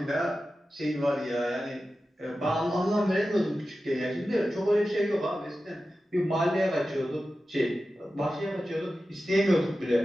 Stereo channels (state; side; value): normal; both; correlation 0.93